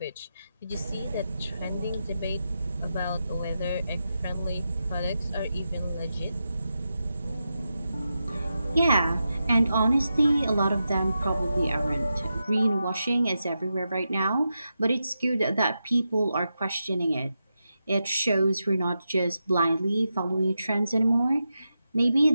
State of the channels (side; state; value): both; inverted; correlation -0.88